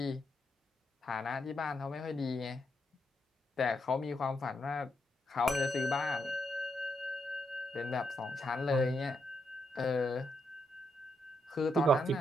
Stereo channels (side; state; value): both; normal; correlation 0.80